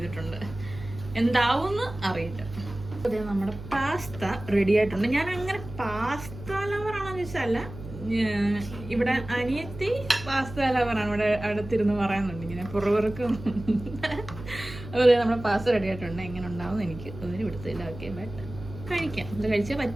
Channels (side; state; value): right; noise; hum, 13 dB below the sound